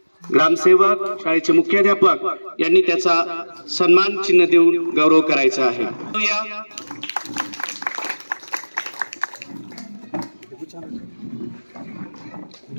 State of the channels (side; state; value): both; inverted; correlation -1.00